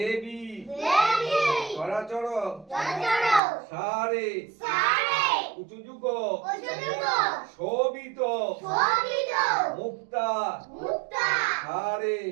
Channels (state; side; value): drops out; left; at 3.4 s